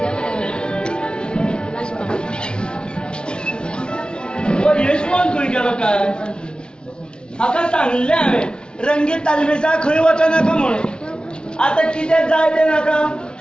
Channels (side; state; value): right; late; 0.054 ms